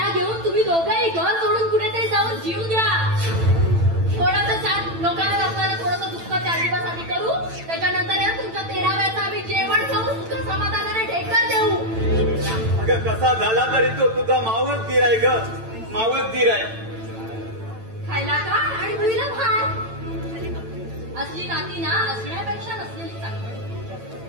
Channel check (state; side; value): late; left; 9.0 ms